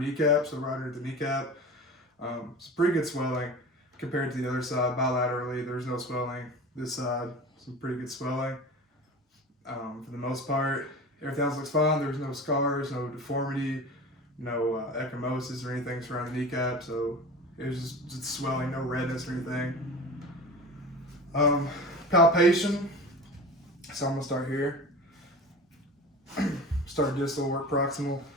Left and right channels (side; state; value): both; normal; correlation 0.34